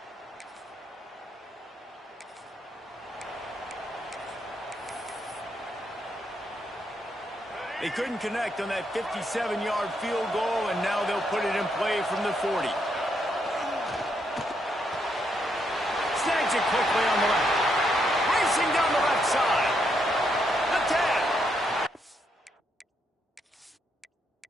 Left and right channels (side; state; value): both; normal; correlation 0.77